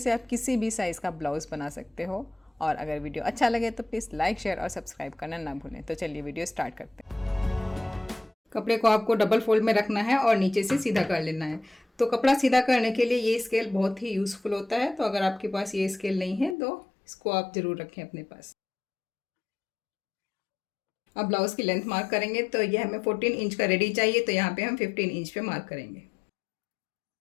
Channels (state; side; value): drops out; right; at 16.6 s